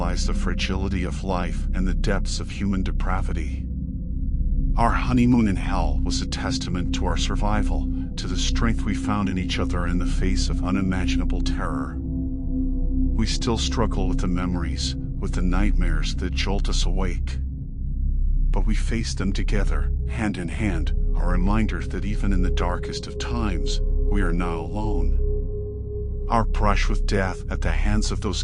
the fragility of life and the depths of human depravity. Our honeymoon in hell was a testament to our survival, to the strength we found in each other in the face of unimaginable terror. We still struggle with the memories, with the nightmares that jolt us awake. But we face them together, hand in hand, a reminder that even in the darkest of times, we are not alone. Our brush with death at the hands of those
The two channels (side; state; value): both; identical; correlation 1.00